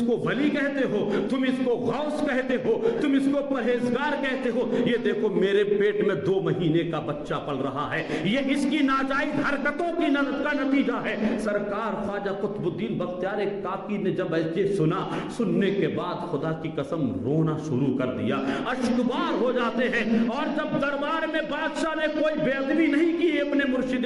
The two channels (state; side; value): identical; both; correlation 1.00